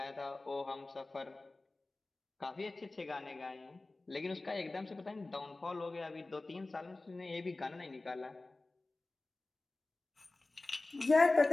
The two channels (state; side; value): quieter; right; 3.1 dB